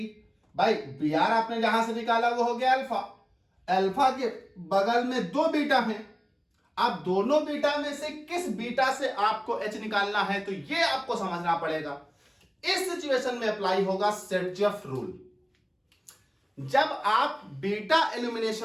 भाई Br आपने जहां से निकाला वो हो गया अल्फा, अल्फा के बगल में दो बीटा हैं। अब दोनों बीटा में से किस बीटा से आपको H निकालना है, तो ये आपको समझना पड़ेगा। इस सिचुएशन में अप्लाई होगा सर्जफ रूल। जब आप बीटा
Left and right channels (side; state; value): both; identical; correlation 1.00